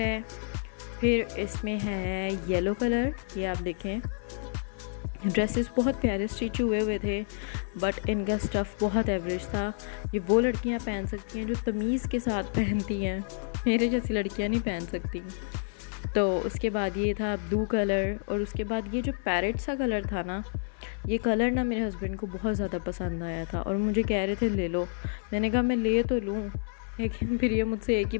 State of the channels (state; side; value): silent; right; 58 dB below the other